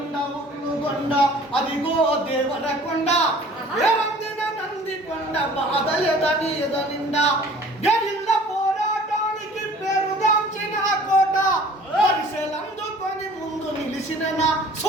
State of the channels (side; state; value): both; normal; correlation 0.49